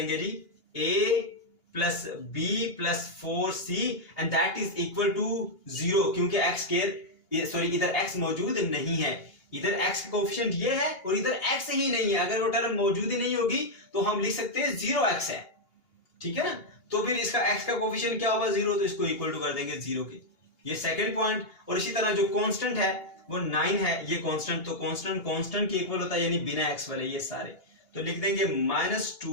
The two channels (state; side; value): late; right; 2.8 ms